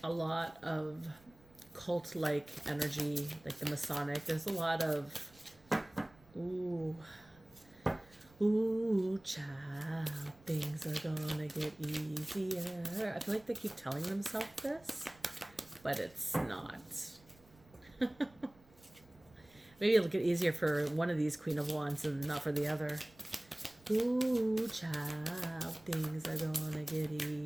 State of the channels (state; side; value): noise; right; rumble, 27 dB below the sound